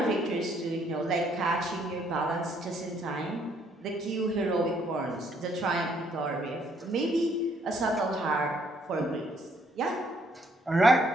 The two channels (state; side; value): normal; both; correlation 0.68